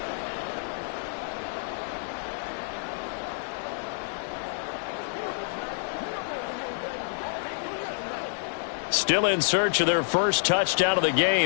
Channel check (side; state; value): right; silent; digital silence